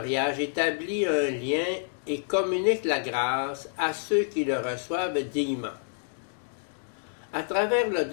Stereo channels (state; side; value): silent; right; digital silence